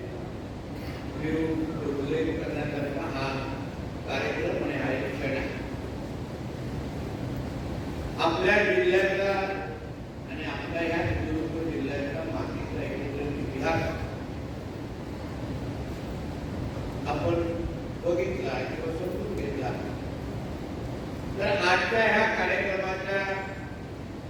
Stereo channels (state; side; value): identical; both; correlation 1.00